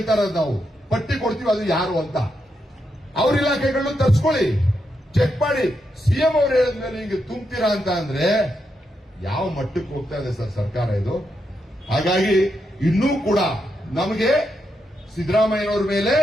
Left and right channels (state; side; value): normal; both; correlation 0.83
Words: ಇರೋದು, ನಾವು ಪಟ್ಟಿ ಕೊಡ್ತೀವಿ ಅದು ಯಾರು ಅಂತ. ಅವ್ರ ಇಲಾಖೆಗಳನ್ನು ತರ್ಸ್ಕೊಳ್ಳಿ, ಚೆಕ್ ಮಾಡಿ. ಸಿಎಂ ಅವ್ರು ಹೇಳಿದ್ಮೇಲೆ ಹಿಂಗೆ ತುಂಬ್ತೀರಾ ಅಂತ ಅಂದ್ರೆ ಯಾವ ಮಟ್ಟಕ್ಕೆ ಹೋಗ್ತಾ ಇದೆ ಸರ್ ಸರ್ಕಾರ ಇದು? ಹಾಗಾಗಿ ಇನ್ನೂ ಕೂಡ ನಮಗೆ ಸಿದ್ದರಾಮಯ್ಯನವ್ರ ಮೇಲೆ